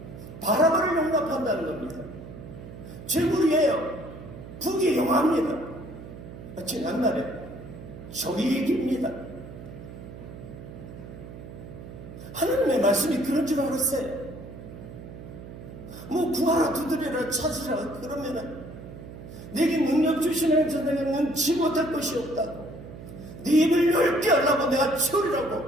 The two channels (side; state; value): right; noise; hum, 13 dB below the sound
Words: 바라바를 용납한다는 겁니다. 죄물이에요. 북이 용합니다. 지난날에 저희 얘기입니다. 하나님의 말씀이 그런 줄 알았어요. 뭐 구하라, 두드려라, 찾으라 그러면은 내게 능력 주시는 자에게는 능치 못할 것이 없다고, 네 입을 열게 하려고 내가